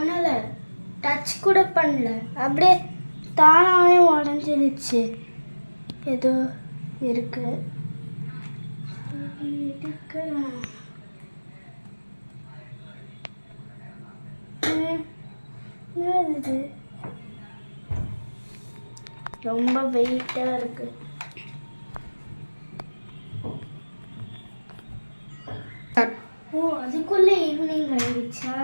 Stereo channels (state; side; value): inverted; both; correlation -1.00